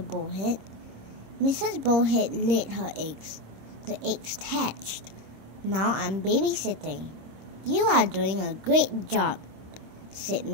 Mrs. Bullhead laid her eggs. The eggs hatched. "Now I'm babysitting." "You are doing a great job," said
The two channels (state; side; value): late; left; 26 ms